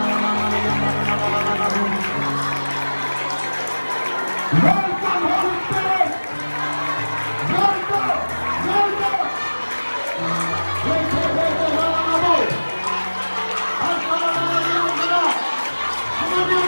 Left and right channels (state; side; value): inverted; both; correlation -1.00